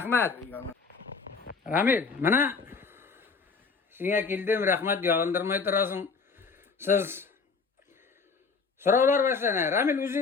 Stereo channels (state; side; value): quieter; right; 4.8 dB